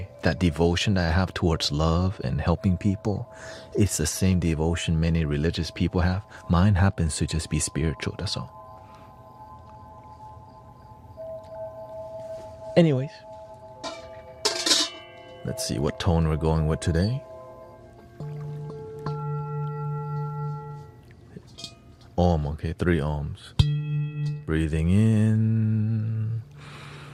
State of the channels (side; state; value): both; identical; correlation 1.00